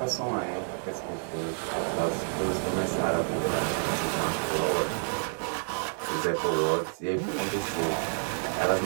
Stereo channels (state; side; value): silent; left; 58 dB below the other